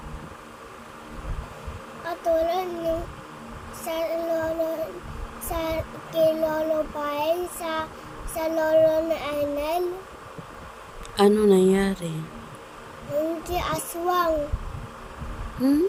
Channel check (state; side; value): identical; both; correlation 1.00